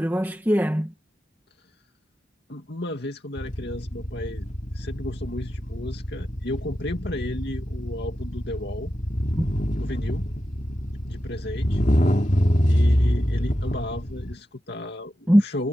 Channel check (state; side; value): normal; both; correlation 0.90